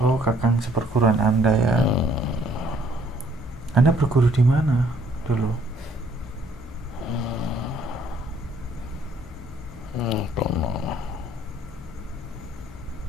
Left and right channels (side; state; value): both; normal; correlation 0.63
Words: Oh, kakang seperguruan Anda ya. Anda berguru di mana dulu?